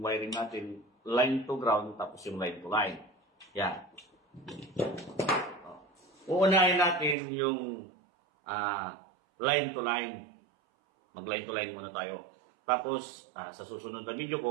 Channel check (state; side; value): drops out; left; at 7.2 s